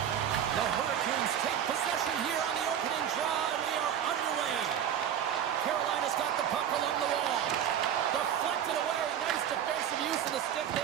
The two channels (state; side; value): quieter; left; 9.5 dB